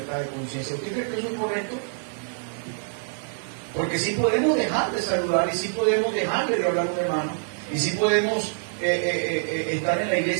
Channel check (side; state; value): left; silent; digital silence